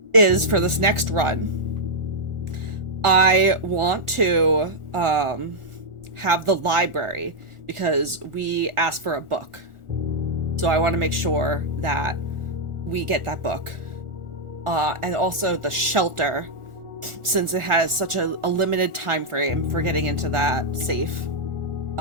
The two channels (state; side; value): late; left; 1.4 ms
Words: is for this next run, I want to have the library because we asked for a book. So I want to make sure that we get that book. And also the shelter, since it has such a limited time frame for getting into that safe.